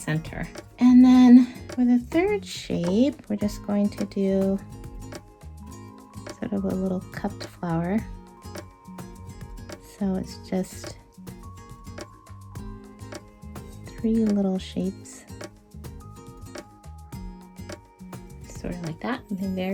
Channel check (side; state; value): both; identical; correlation 1.00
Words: And then for the third shape, we're just going to do sort of a little cupped flower. So it's just 3 little shapes. Sort of like that,